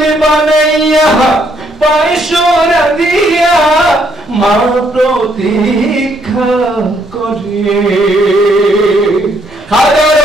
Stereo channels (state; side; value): normal; both; correlation 0.70